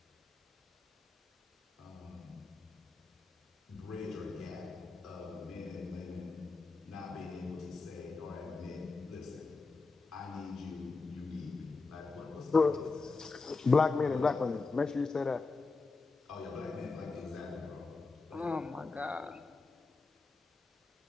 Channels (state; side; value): quieter; right; 4.0 dB